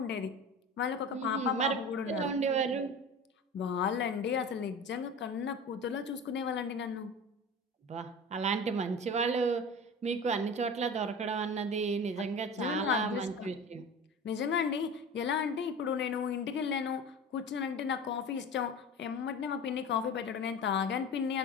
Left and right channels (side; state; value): both; normal; correlation 0.33